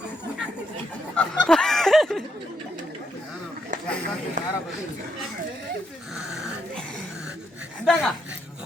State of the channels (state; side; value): normal; both; correlation 0.78